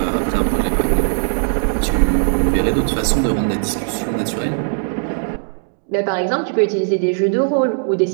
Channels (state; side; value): silent; left; 61 dB below the other